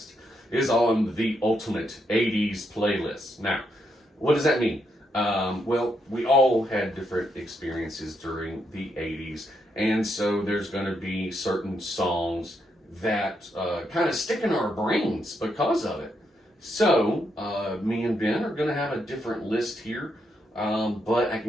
is on the ultimate 80's playlist. Now, what does that mean? We all had different experiences during the 80's, and so there's going to be certain songs that kind of stick in our brains because of it. So, me and Ben are going to have a different list here. But I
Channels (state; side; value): normal; both; correlation 0.79